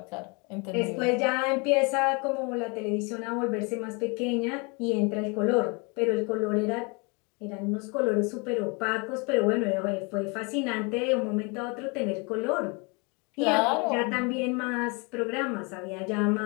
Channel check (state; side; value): quieter; right; 30.9 dB